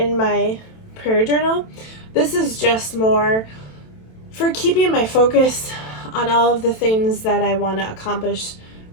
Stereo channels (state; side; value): late; right; 27 ms